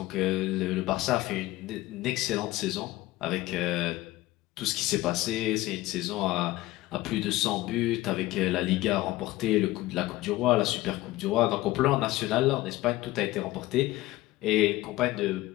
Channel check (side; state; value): right; quieter; 17.7 dB